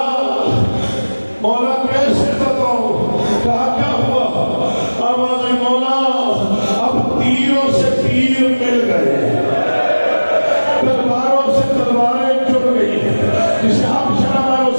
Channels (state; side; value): inverted; both; correlation -1.00